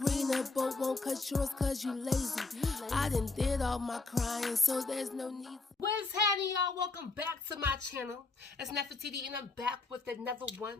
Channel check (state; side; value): quieter; right; 3.7 dB